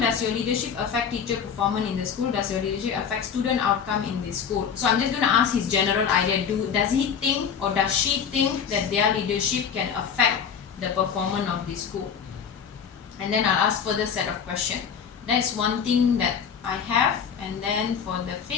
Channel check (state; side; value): quieter; right; 7.2 dB